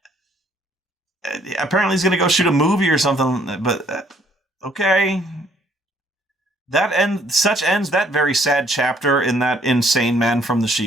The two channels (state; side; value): normal; both; correlation 0.64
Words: Apparently he's going to go shoot a movie or something, but okay. Such ends that very sad chapter in that insane man from the